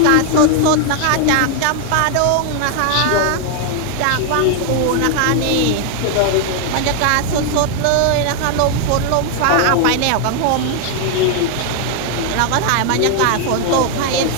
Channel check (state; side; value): different; both; correlation 0.00